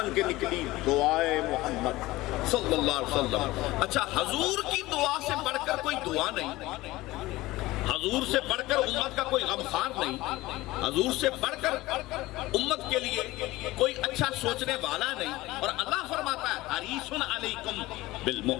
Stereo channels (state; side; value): quieter; right; 18.9 dB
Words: کے نکلی دعائے محمد صلی اللہ علیہ وسلم۔ اچھا، حضور کی دعا سے بڑھ کر کوئی دعا نہیں، حضور سے بڑھ کر امت کا کوئی غمخوار نہیں، حضور سے بڑھ کر امت کے لیے کوئی اچھا سوچنے والا نہیں، اور اللہ فرماتا ہے حریص علیکم